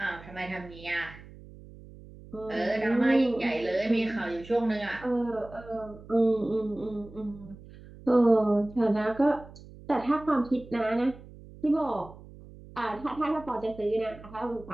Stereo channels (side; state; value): right; noise; hum, 18 dB below the sound